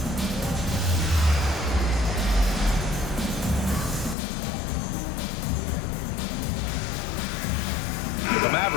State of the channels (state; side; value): drops out; right; at 4.2 s